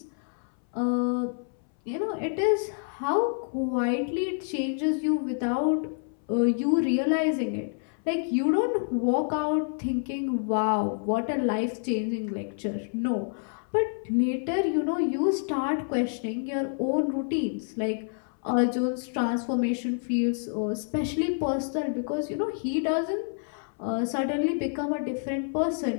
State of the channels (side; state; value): right; silent; 59 dB below the other